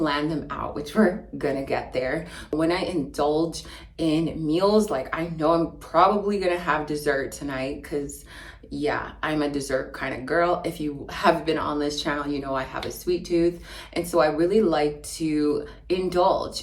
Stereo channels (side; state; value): both; identical; correlation 1.00